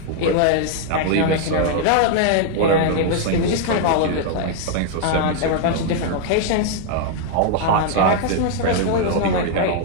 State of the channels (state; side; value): different; both; correlation 0.00